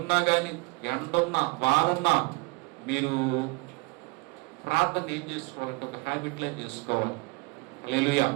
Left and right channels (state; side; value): quieter; left; 27.9 dB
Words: కానీ, ఎండున్నా వారున్నా, మీరు ప్రార్థన ఏం చేసుకోవాలంటే ఒక హ్యాబిట్లో చేసుకోవాలి. హల్లెలూయా.